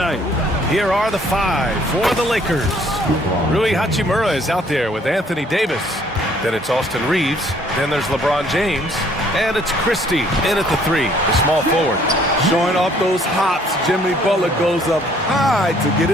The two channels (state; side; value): normal; both; correlation 0.61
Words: Here are the five for the Lakers. Rui Hachimura is out there with Anthony Davis. Then it's Austin Reeves. Then there's LeBron James. And it's Christie in at the three, the small forward. Showing off those hops, Jimmy Butler goes up high to get